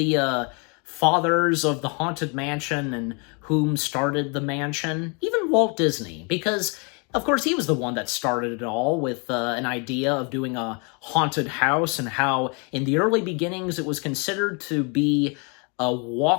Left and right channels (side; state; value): right; quieter; 33.7 dB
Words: fathers of the Haunted Mansion and whom started the mansion, even Walt Disney, because of course, he was the one that started it all with an idea of doing a haunted house and how in the early beginnings it was considered to be a